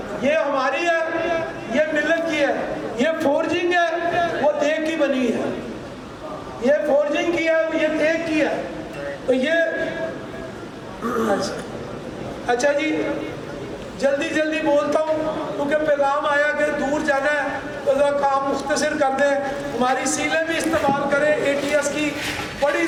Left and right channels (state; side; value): identical; both; correlation 1.00